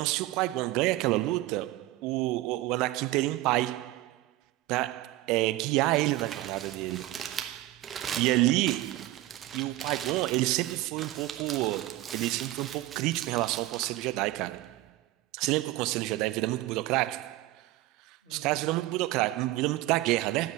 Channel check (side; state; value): left; quieter; 16.7 dB